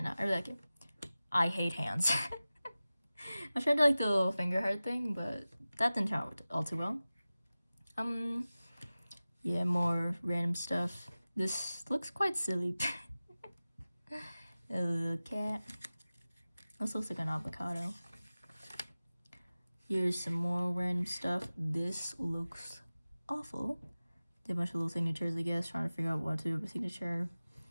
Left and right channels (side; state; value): both; inverted; correlation -0.96